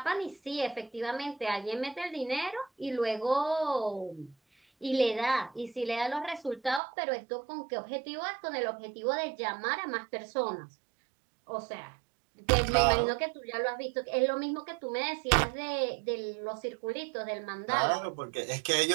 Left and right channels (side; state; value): left; drops out; at 6.8 s